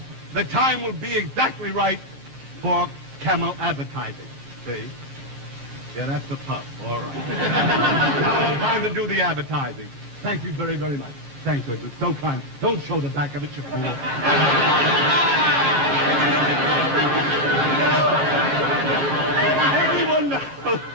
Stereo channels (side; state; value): left; late; 14 ms